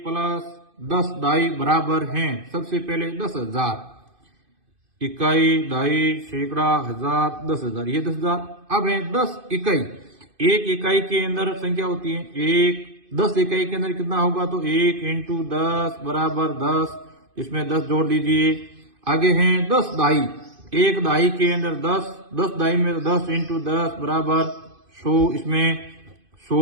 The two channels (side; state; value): left; late; 2.5 ms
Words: प्लस 10 दाई बराबर हैं। सबसे पहले 10,000 इकाई दाई सैकड़ा हजार 10,000, ये 10,000। अब है 10 इकाई, एक इकाई के अंदर संख्या होती है 1, 10 इकाई के अंदर कितना होगा तो 1 इंटू 10 बराबर 10, इसमें 10 जोड़ दीजिए। आगे है 10 दाई, एक दाई के अंदर 10, 10 दाई में 10 इंटू 10 बराबर 100, इसमें